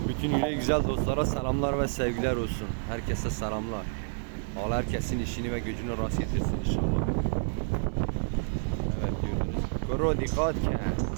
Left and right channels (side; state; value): left; silent; 58 dB below the other